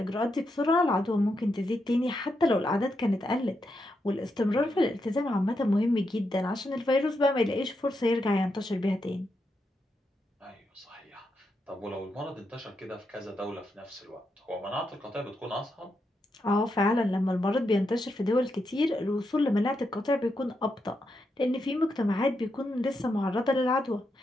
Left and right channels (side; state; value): both; normal; correlation 0.83